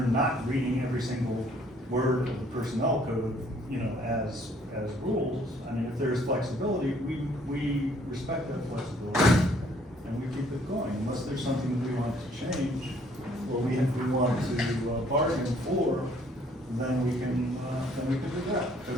not reading every single word of the personnel code, as rules, if there's flexibility, we respect that flexibility and we keep it going unless there's something that we want to change or we want to bargain for, then we can do that.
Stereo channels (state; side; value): normal; both; correlation 0.62